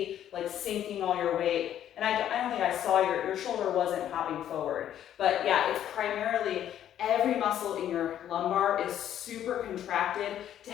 like sinking all your weight. And I don't think I saw your shoulder wasn't hopping forward. But yeah, it's primarily every muscle in your lumbar is super contracted to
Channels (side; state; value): right; quieter; 10.8 dB